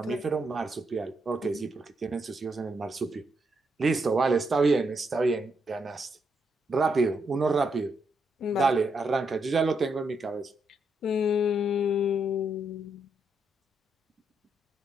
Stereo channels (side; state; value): both; normal; correlation 0.79